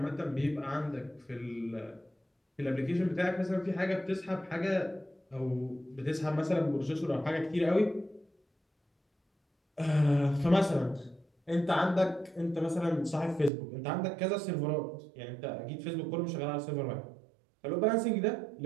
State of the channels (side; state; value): left; drops out; at 13.5 s